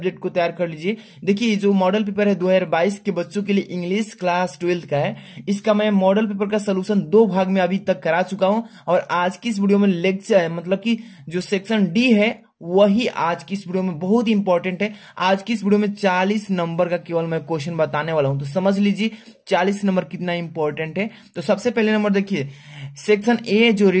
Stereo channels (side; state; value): both; identical; correlation 1.00